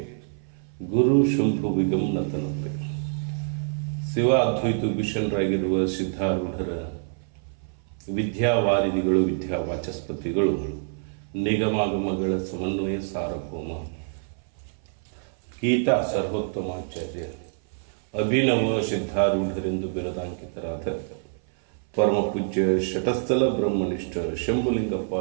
ಗುರು ಶುಂಭುವಿಗಂ ನತನತೆ. ಶಿವ ಅದ್ವೈತ ಭೀಷಣರಾಗಿರುವ ಸಿದ್ಧಾರೂಢರ ವಿದ್ಯಾವಾರಿಧಿಗಳು, ವಿದ್ಯಾವಾಚಸ್ಪತಿಗಳು, ನಿಗಮಾಗಮಗಳ ಸಮನ್ವಯ ಸಾರ್ವಭೌಮ ಗೀತಾ ಸರ್ವೋತ್ತಮಾಚಾರ್ಯ ಅಭಿನವ ಸಿದ್ಧಾರೂಢರೆಂದು ಬಿರದಾಂಕಿತರಾದ ಪರಮ ಪೂಜ್ಯ ಶಟಸ್ಥಲ ಬ್ರಹ್ಮನಿಷ್ಠ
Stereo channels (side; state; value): left; silent; 57 dB below the other